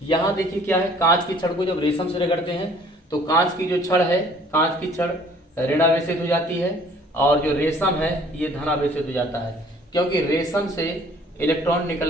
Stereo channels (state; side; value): normal; both; correlation 0.55